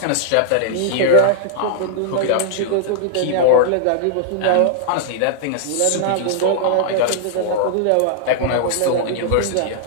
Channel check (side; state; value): both; different; correlation -0.01